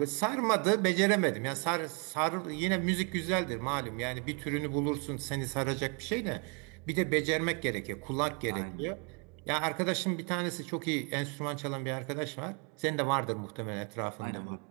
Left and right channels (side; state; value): left; quieter; 35.7 dB